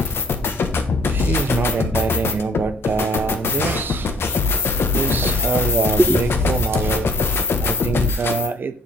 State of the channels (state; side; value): normal; both; correlation 0.58